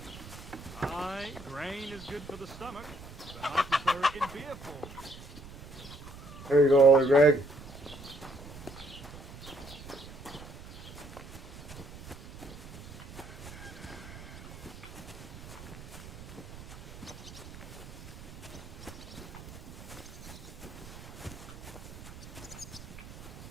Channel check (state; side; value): noise; right; rumble, 15 dB below the sound